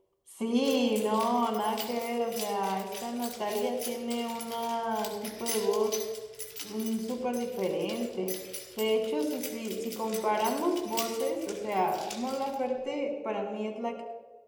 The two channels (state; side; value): identical; both; correlation 1.00